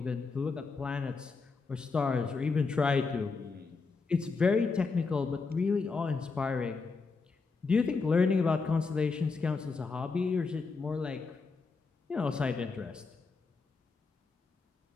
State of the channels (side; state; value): right; quieter; 4.4 dB